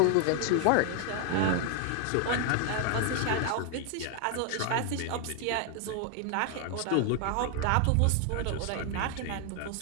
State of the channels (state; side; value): different; both; correlation 0.00